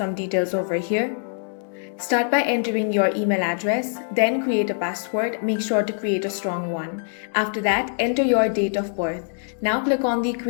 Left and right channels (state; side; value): silent; right; 63 dB below the other